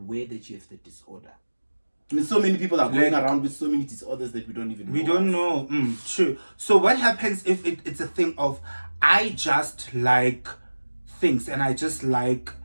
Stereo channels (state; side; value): inverted; both; correlation -1.00